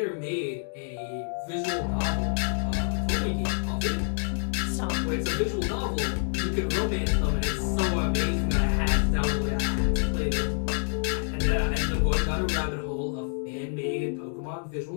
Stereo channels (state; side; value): silent; right; digital silence